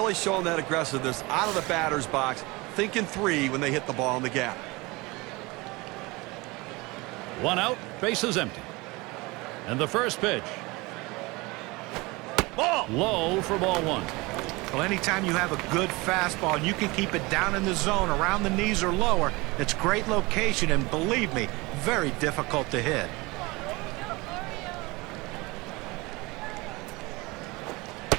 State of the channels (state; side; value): quieter; left; 23.8 dB